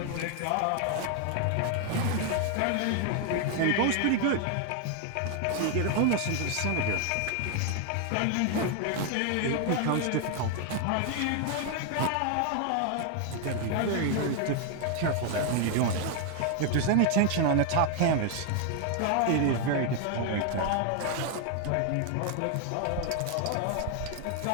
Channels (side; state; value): both; different; correlation 0.00